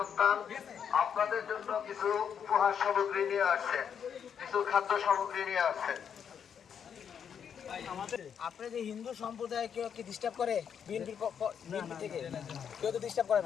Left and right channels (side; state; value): right; quieter; 7.8 dB